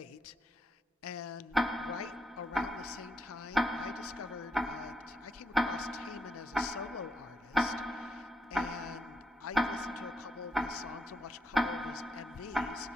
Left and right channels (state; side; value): normal; both; correlation 0.79